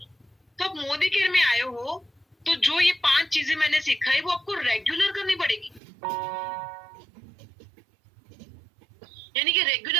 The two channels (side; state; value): left; drops out; at 5.8 s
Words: तो आप मोदी केयर में आए हो, तो जो ये 5 चीजें मैंने सिखाई वो आपको रेगुलर करनी पड़ेगी। यानी कि